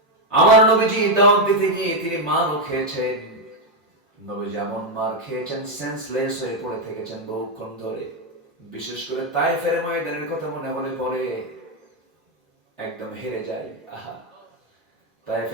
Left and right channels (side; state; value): both; normal; correlation 0.03